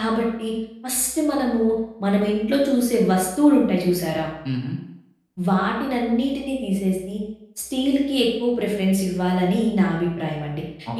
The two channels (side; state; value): both; identical; correlation 1.00